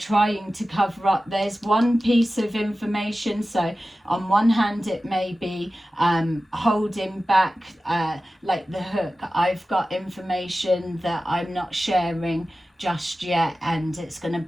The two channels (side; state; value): both; normal; correlation 0.95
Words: to cover up. There's one piece of information, so on one hand it may be holding back, like the hook, I've got information that I'm not sharing just yet and it's going to